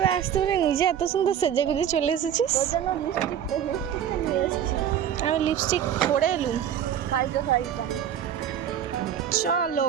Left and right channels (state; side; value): quieter; left; 9.5 dB